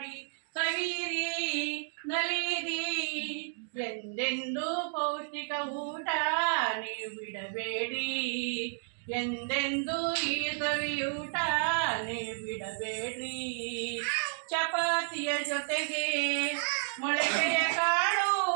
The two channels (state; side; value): silent; left; digital silence